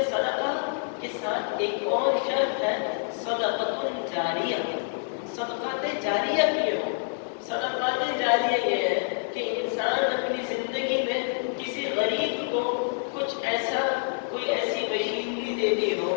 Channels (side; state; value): right; silent; digital silence